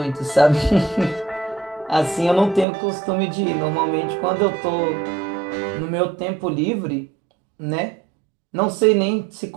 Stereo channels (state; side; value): drops out; left; at 2.7 s